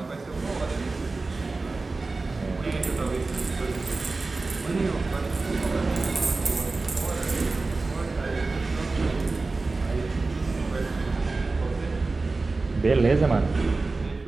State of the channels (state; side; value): quieter; left; 3.6 dB